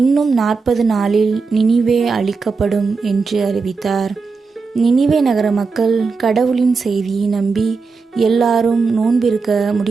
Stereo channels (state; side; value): quieter; left; 4.6 dB